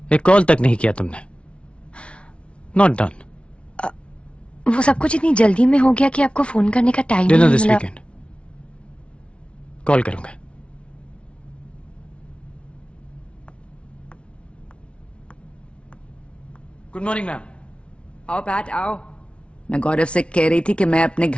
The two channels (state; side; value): late; right; 0.060 ms